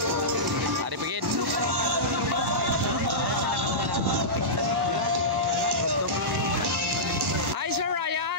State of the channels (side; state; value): both; normal; correlation -0.15